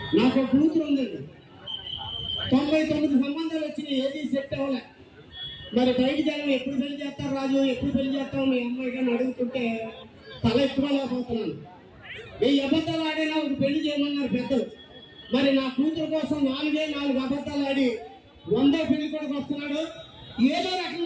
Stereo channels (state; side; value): identical; both; correlation 1.00